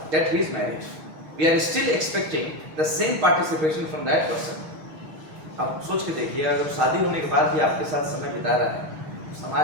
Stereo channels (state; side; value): late; left; 6.3 ms